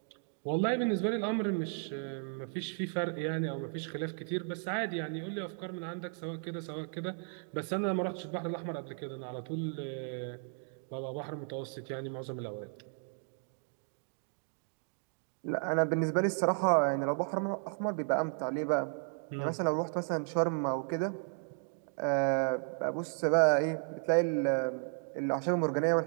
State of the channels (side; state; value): left; silent; 55 dB below the other